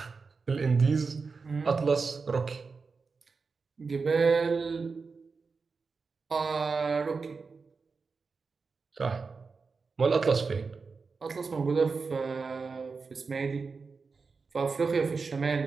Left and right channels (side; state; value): left; quieter; 4.7 dB